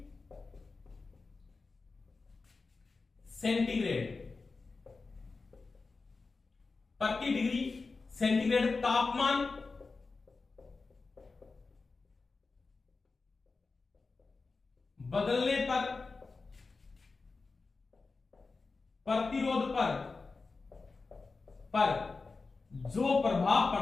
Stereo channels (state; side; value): quieter; right; 4.1 dB